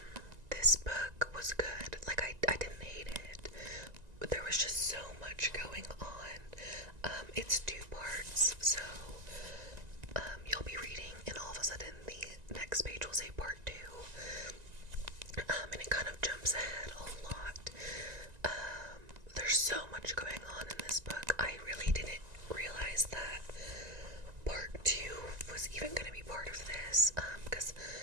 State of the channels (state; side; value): late; left; 1.9 ms